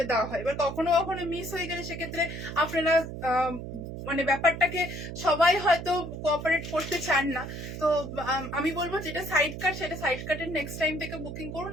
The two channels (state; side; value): noise; right; hum, 8 dB below the sound